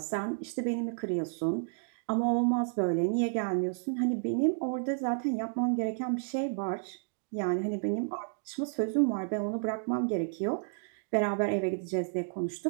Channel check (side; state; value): left; silent; digital silence